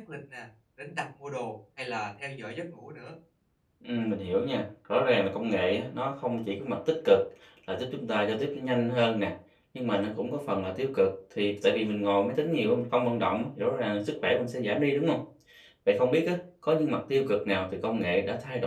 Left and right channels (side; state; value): both; identical; correlation 1.00